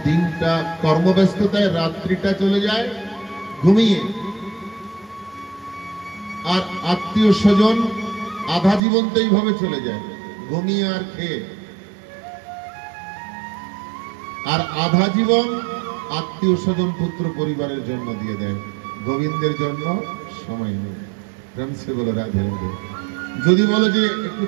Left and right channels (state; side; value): drops out; left; at 8.8 s